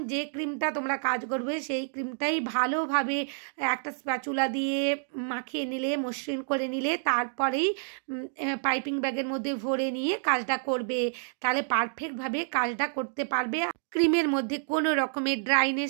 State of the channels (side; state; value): left; silent; digital silence